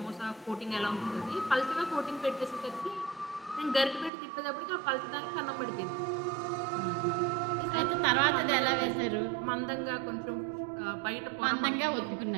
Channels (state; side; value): drops out; left; at 4.1 s